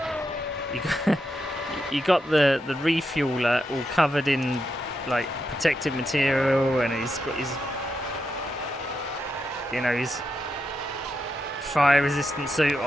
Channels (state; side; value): normal; both; correlation 0.85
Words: You got the refueler all covered in like protective material, and he's got his fire resistant suit